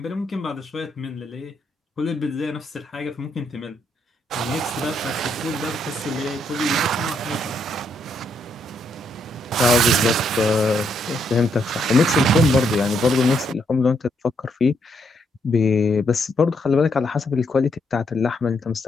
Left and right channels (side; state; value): both; normal; correlation 0.75